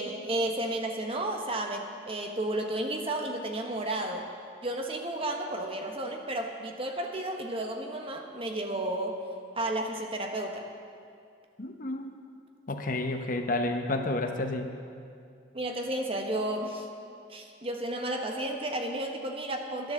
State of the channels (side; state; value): both; normal; correlation 0.26